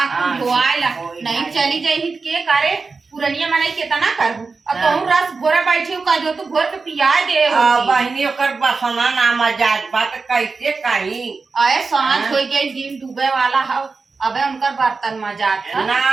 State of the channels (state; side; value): quieter; left; 4.4 dB